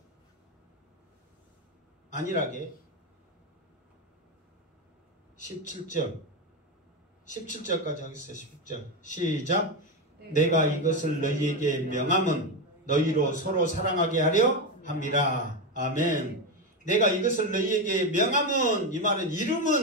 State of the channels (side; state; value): both; normal; correlation 0.12